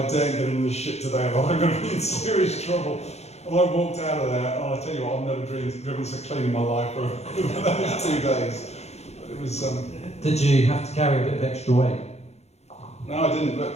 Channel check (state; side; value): late; right; 0.31 ms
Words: daren't get in this shit today, but I'm going to be in serious trouble. And I walked out of there, and I tell you what, I've never driven so clean in my life for those 2 days. But it was... Did you have to carry a bit of extra weight? No, I didn't, but